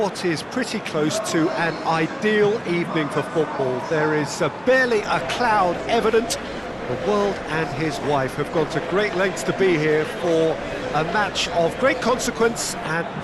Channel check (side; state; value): both; identical; correlation 1.00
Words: is pretty close to an ideal evening for football. There is barely a cloud evident. The world and his wife have gone to great lengths to be here for a match of great consequence and